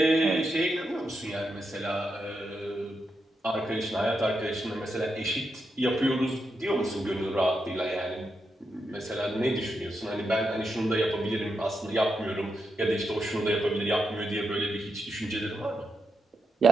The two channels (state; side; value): normal; both; correlation 0.85